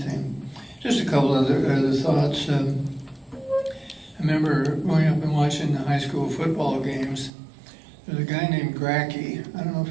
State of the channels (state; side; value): drops out; left; at 7.3 s